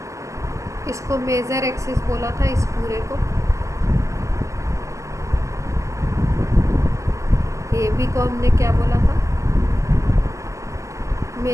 इसको मेजर एक्सिस बोला था इस पूरे को। ए बी को हमने क्या बोला था?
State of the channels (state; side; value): late; left; 0.15 ms